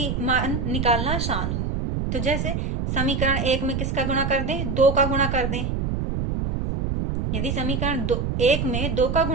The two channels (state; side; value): noise; right; rumble, 1 dB below the sound